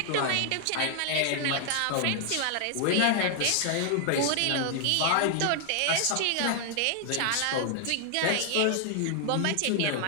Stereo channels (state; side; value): different; both; correlation 0.00